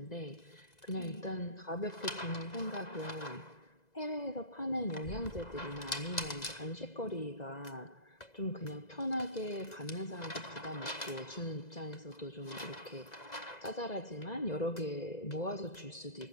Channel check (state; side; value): late; right; 2.0 ms